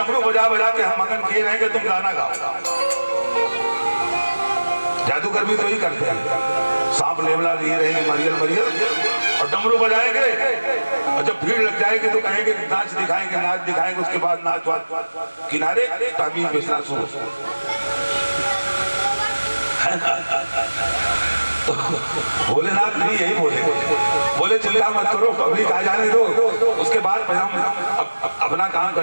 बजा बजा के हम मगन किए रहेंगे, तुम गाना गाओ। जादूगर भी तो ही करते हैं, सांप लेवला लिए रहेंगे मरियल मरियल और डमरू बजाएंगे, और जब भीड़ लग जाएगी तो कहेंगे नाच दिखाएंगे, नाच दिखाएंगे, उसके बाद नाच वाच किनारे ताबीज बेचना शुरू। तो भोलेनाथ भी यही बोले चिल्ला मत करो, पब्लिक आ जाने दो, उसके बाद हम अपना काम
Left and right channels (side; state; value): both; inverted; correlation -1.00